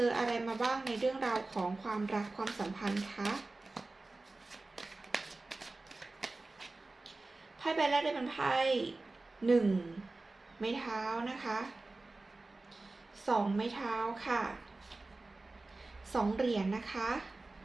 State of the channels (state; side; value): quieter; left; 3.2 dB